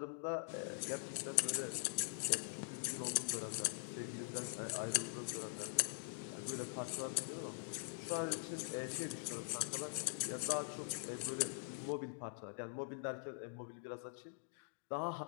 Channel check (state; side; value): silent; right; digital silence